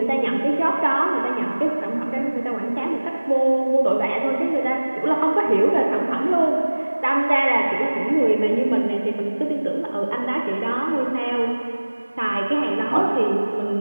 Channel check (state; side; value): inverted; both; correlation -1.00